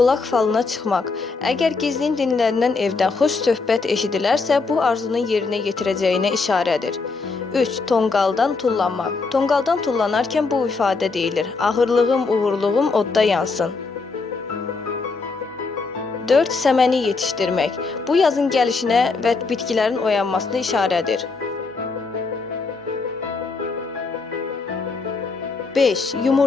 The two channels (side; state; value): right; quieter; 4.2 dB